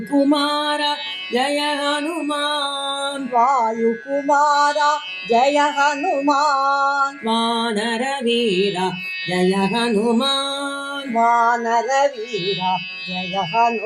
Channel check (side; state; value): both; identical; correlation 1.00